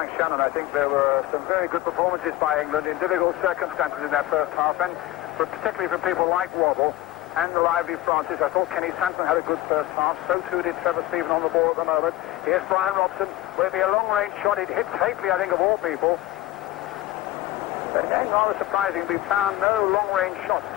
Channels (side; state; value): right; quieter; 16.1 dB